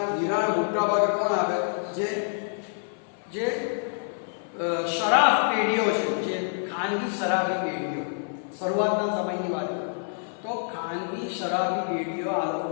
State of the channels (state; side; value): silent; right; 56 dB below the other